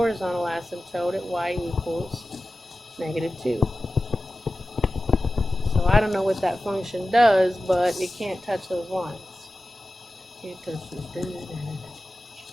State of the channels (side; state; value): both; normal; correlation 0.95